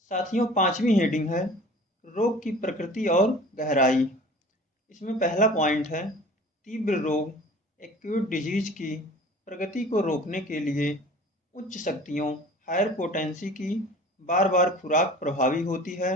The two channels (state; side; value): normal; both; correlation 0.44